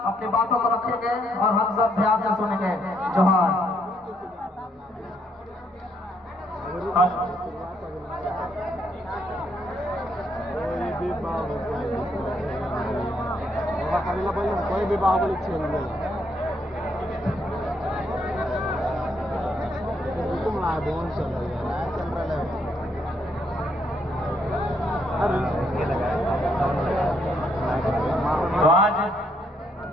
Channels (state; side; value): normal; both; correlation 0.73